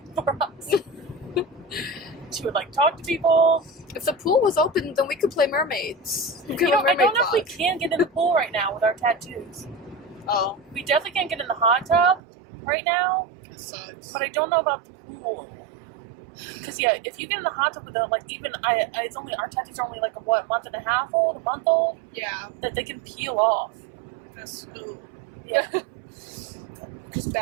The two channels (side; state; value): left; drops out; at 12.2 s